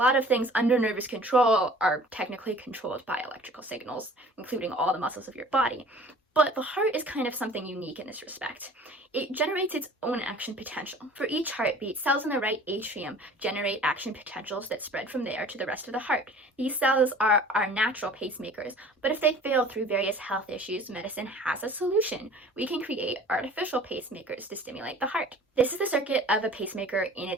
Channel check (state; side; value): normal; both; correlation 0.47